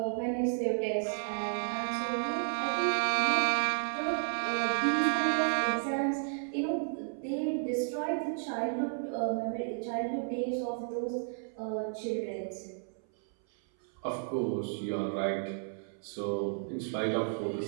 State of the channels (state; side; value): silent; left; 56 dB below the other